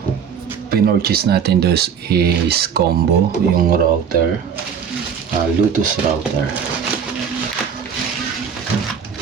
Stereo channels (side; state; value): left; quieter; 7.3 dB